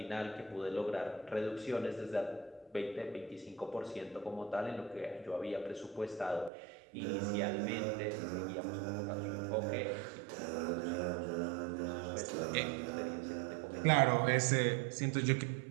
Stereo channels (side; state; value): left; drops out; at 6.5 s